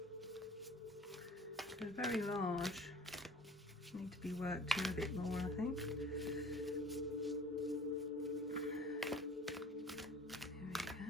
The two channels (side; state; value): both; normal; correlation 0.46